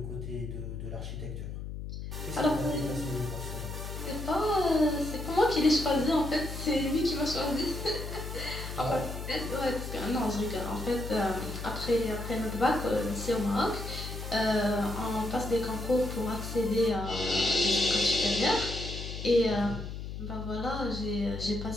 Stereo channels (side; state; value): left; noise; hum, 7 dB below the sound